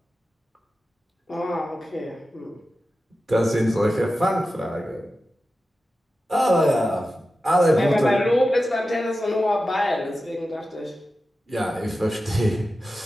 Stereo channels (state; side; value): normal; both; correlation 0.93